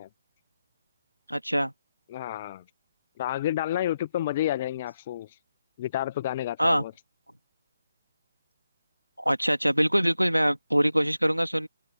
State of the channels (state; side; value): inverted; both; correlation -0.89